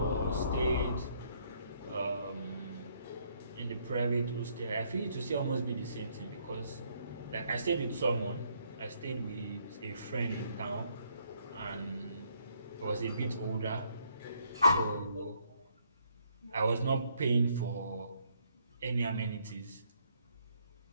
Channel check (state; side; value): inverted; both; correlation -0.69